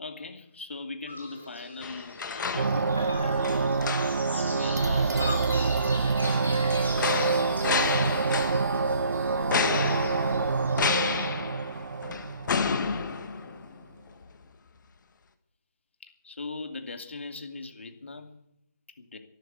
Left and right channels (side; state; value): both; inverted; correlation -0.56